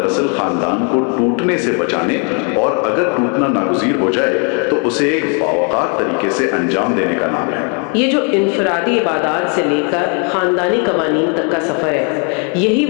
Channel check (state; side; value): quieter; right; 37.9 dB